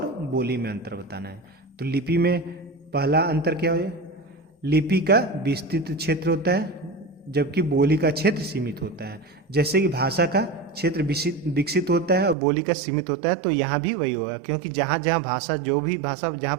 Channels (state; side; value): drops out; left; at 12.4 s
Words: बोली में अंतर बताना है। तो लिपि में पहला अंतर क्या है, लिपि का विस्तृत क्षेत्र होता है, जबकि बोली का क्षेत्र सीमित होता है। जैसे कि भाषा का क्षेत्र विकसित होता है और बोली का सीमित होता है, तो यहाँ भी वही होगा, क्योंकि जहाँ जहाँ भाषा, जो भी भाषा जहाँ